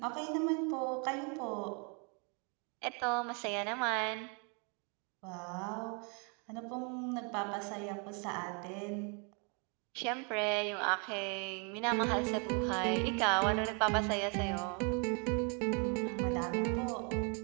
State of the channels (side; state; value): left; quieter; 35.6 dB